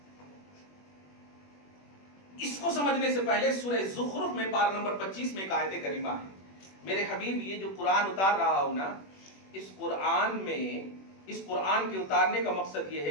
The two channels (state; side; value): late; right; 21 ms